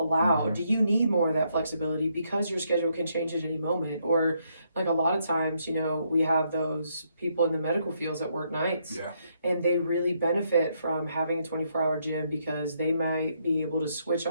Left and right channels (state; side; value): inverted; both; correlation -0.75